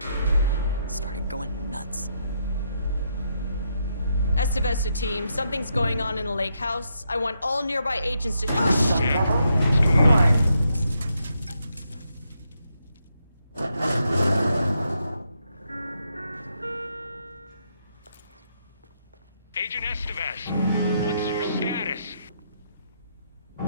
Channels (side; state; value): both; inverted; correlation -0.79